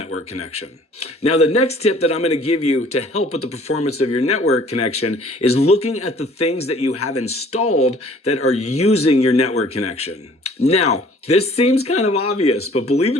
connection. Now, the next tip that I'm going to give you to help with the performance of your network connection is looking at the things that you have installed that are using your network connection. Now, this seems kind of obvious, but believe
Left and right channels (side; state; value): both; normal; correlation 0.54